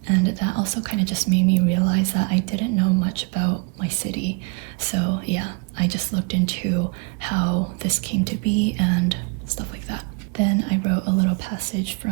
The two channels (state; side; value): quieter; left; 31.0 dB